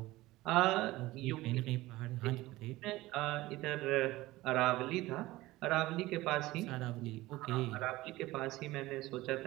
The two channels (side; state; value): left; quieter; 18.4 dB